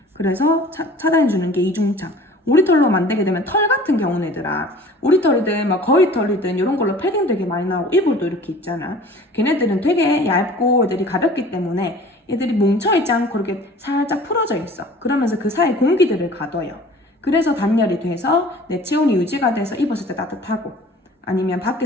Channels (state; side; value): normal; both; correlation 0.46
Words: 그래서 차단해주는 게 이중창. 오리털로 만들게 되면 털 같은 경우는 얘들아 오리털이든 막 거위털이든 이런 걸로 패딩 되게 많이 나오고 이불도 이렇게 있잖아. 걔네들은 되게 얇고 애들이 가볍기 때문에 얘들이 뭉쳐있지 않고 이렇게 살짝 풀어져 있어. 그러면서 그 사이 공기들을 가둬요. 그래서 단열이 돼서 내 체온이 유지가 돼서 입었을 때 따뜻하고 아니면